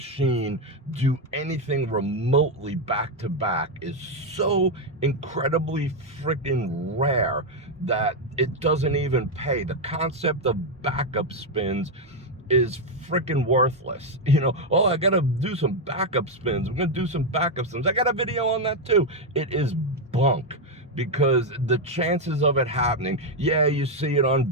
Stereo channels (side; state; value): both; normal; correlation 0.03